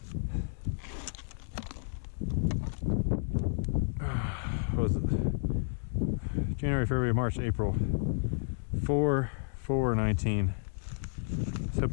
What was it? January, February, March, April. 4/4/19. Let's hope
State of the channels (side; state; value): right; silent; digital silence